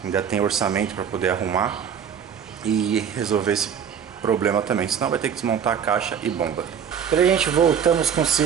ainda tem orçamento para poder arrumar e resolver esse problema também, senão vai ter que desmontar a caixa e bomba. Beleza, gente, voltamos com o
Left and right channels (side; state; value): left; quieter; 7.9 dB